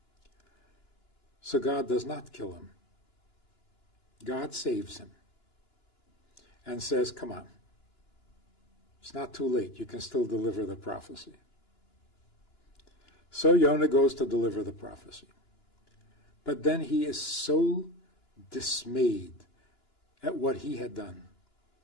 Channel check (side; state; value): right; late; 2.9 ms